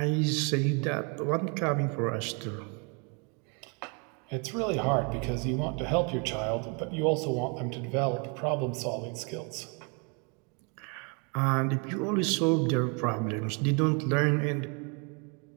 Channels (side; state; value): left; quieter; 34.8 dB